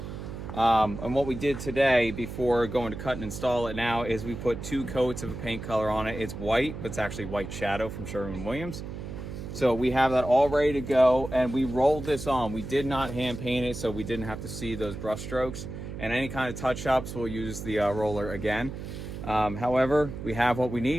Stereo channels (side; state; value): right; noise; hum, 9 dB below the sound